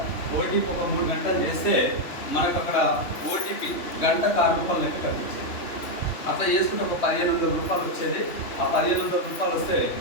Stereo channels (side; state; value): right; late; 3.1 ms